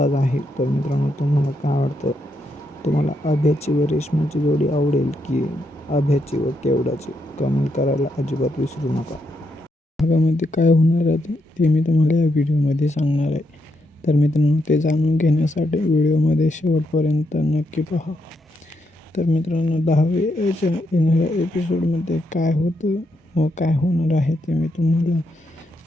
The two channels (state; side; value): normal; both; correlation 0.80